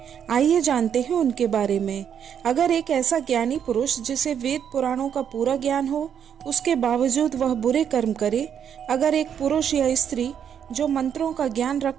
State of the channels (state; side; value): quieter; left; 8.4 dB